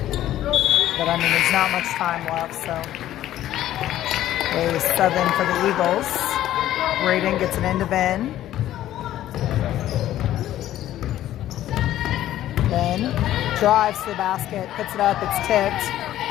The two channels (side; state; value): right; quieter; 13.1 dB